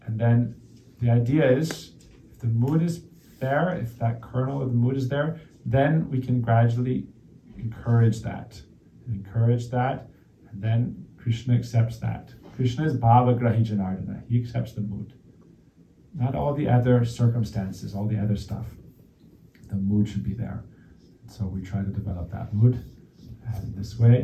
and then the idea is, if the mood is there, if that kernel of the mood is there, then we can gradually encourage that, and then Krishna accepts that. Krishna is Bhava Grahi Janardana. He accepts the mood. Not all the other circumstances, all the other stuff. The mood should be there. So we try to develop that mood. And this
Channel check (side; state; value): both; identical; correlation 1.00